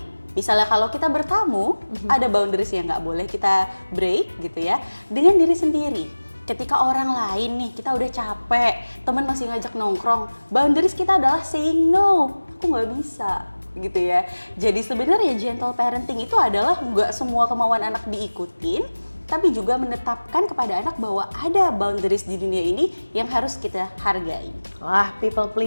Misalnya kalau kita bertamu, ada boundaries yang nggak boleh kita break gitu ya. Dengan diri sendiri. Ketika orang lain nih, kita udah capek, teman masih ngajak nongkrong, boundaries kita adalah saying no, aku nggak bisa gitu ya. Jadi sebenarnya gentle parenting itu adalah nggak semua kemauan anak diikutin, tapi juga menetapkan kepada anak bahwa ada boundaries di dunia ini yang harus kita hargai. Wah, people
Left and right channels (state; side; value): inverted; both; correlation -1.00